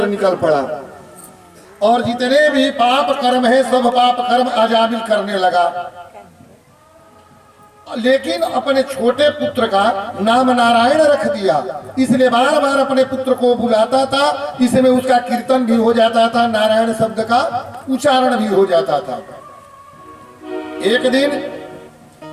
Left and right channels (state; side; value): identical; both; correlation 1.00